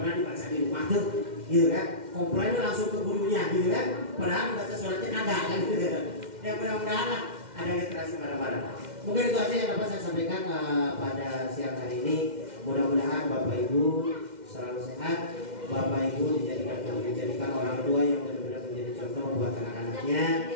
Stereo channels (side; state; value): left; late; 2.1 ms